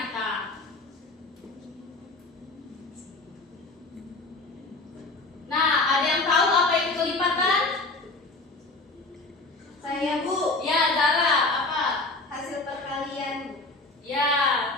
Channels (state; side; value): quieter; right; 3.2 dB